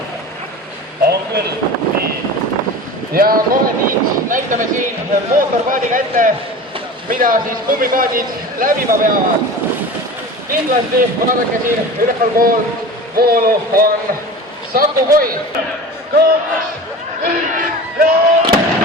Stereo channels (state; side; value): normal; both; correlation 0.34